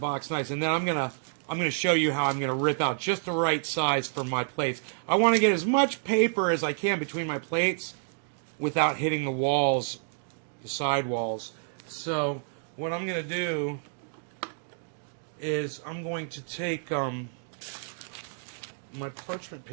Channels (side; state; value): left; silent; 58 dB below the other